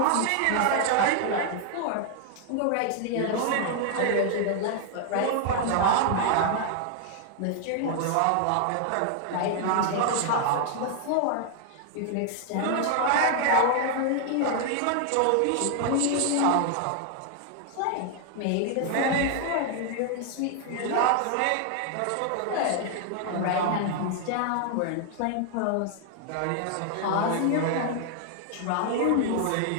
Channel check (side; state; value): both; different; correlation 0.00